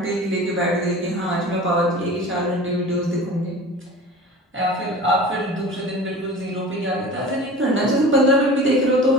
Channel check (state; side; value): normal; both; correlation 0.38